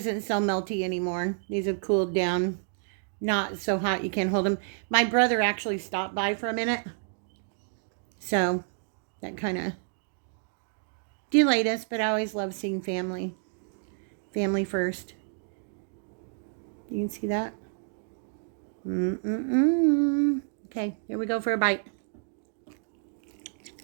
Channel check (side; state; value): left; silent; digital silence